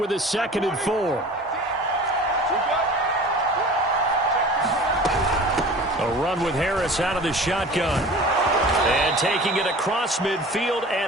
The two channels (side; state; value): both; normal; correlation 0.41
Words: his 2nd and 4. A run with Harris out of the shotgun. And taking it across midfield